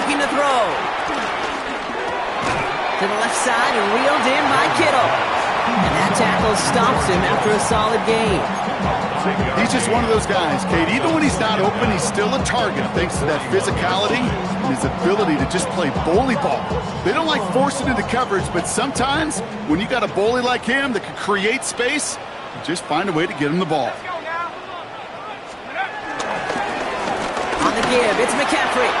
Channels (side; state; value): both; identical; correlation 1.00